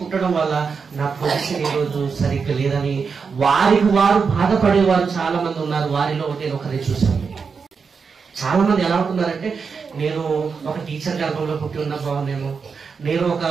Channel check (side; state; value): left; quieter; 5.5 dB